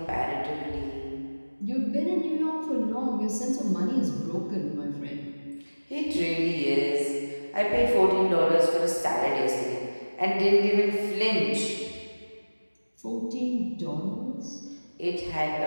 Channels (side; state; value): both; inverted; correlation -1.00